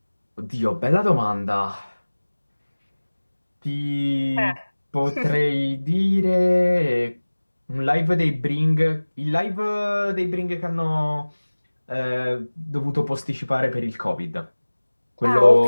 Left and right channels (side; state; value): both; inverted; correlation -1.00